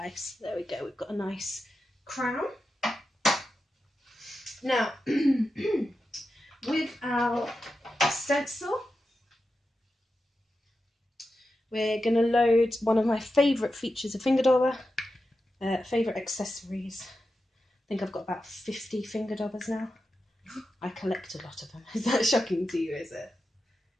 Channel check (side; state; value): both; normal; correlation 0.90